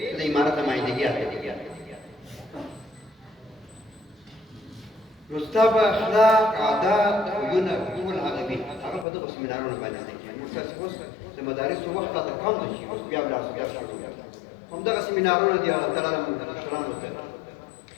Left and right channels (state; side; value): drops out; right; at 9.1 s